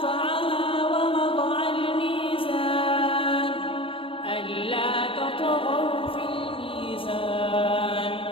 ووضع الميزان ألا تطغوا في الميزان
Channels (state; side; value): late; right; 0.26 ms